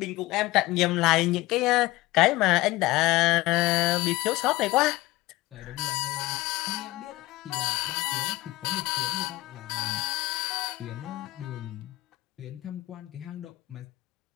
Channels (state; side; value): quieter; right; 19.1 dB